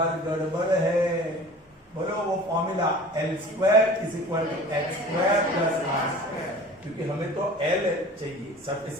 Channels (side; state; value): both; normal; correlation 0.42